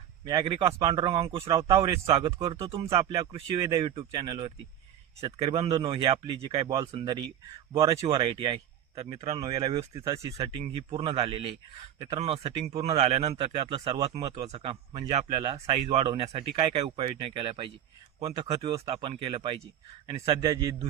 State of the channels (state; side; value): quieter; left; 10.8 dB